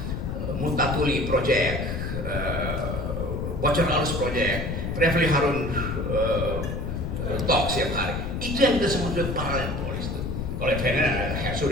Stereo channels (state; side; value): noise; left; rumble, 3 dB below the sound